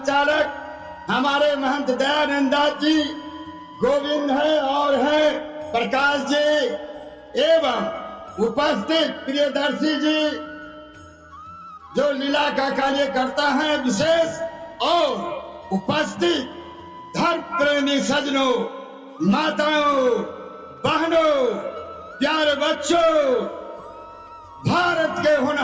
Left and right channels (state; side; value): identical; both; correlation 1.00